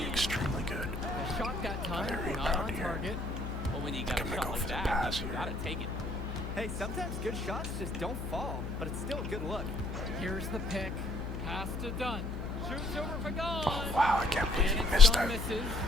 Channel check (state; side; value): noise; left; hum, 6 dB below the sound